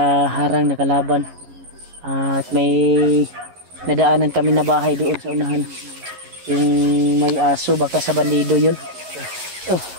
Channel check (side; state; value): left; late; 11 ms